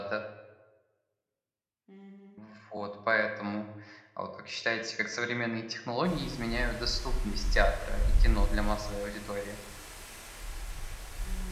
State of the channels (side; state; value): both; identical; correlation 1.00